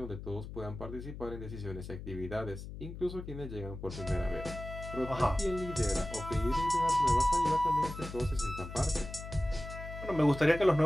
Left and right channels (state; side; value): noise; left; hum, 10 dB below the sound